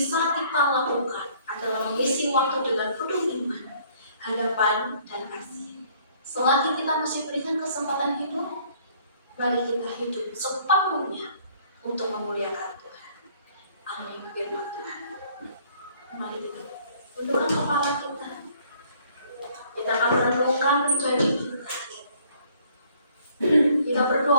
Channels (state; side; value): inverted; both; correlation -0.59